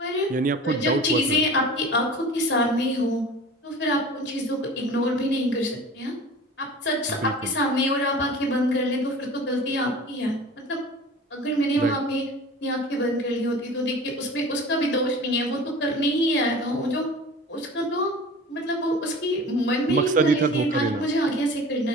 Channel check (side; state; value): both; normal; correlation 0.39